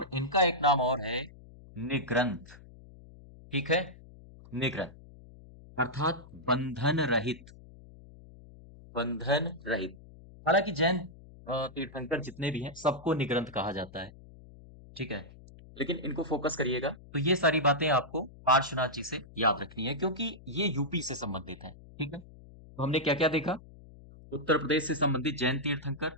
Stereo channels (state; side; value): noise; left; hum, 20 dB below the sound